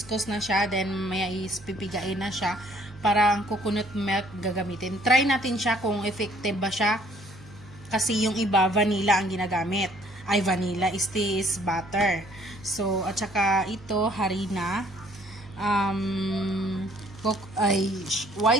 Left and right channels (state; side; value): noise; right; hum, 20 dB below the sound